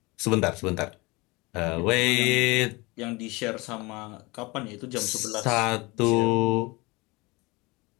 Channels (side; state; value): right; quieter; 24.6 dB